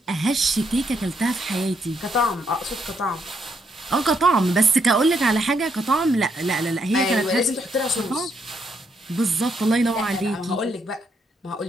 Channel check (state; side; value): normal; both; correlation 0.76